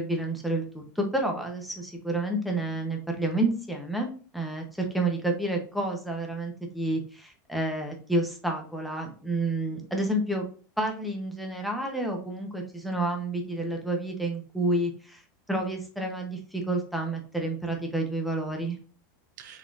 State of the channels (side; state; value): both; normal; correlation 0.42